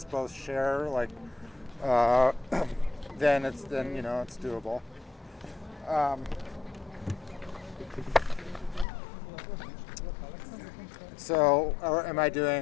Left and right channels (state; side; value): drops out; right; at 8.8 s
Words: both share, like, then it's doable. So, am I